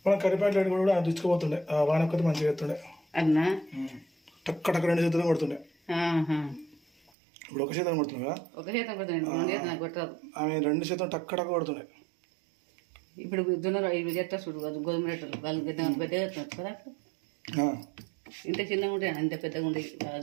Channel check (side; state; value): left; drops out; at 7.1 s